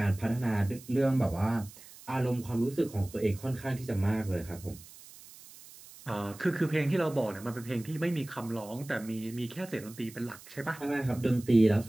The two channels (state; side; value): noise; right; hiss, 19 dB below the sound